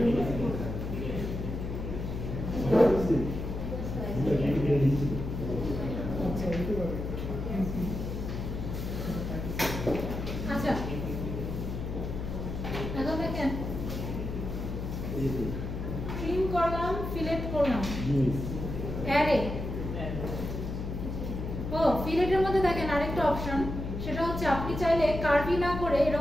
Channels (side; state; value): left; noise; hum, 5 dB below the sound